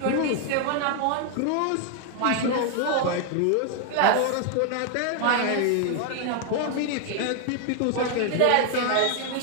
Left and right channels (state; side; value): different; both; correlation 0.00